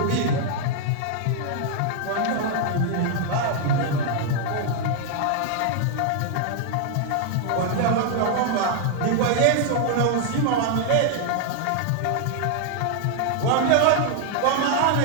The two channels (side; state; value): both; different; correlation 0.00